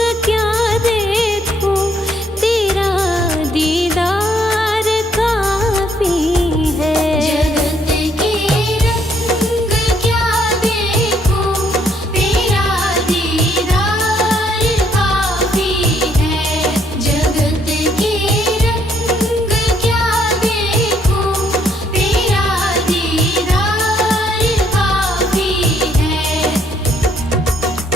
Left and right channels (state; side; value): normal; both; correlation 0.69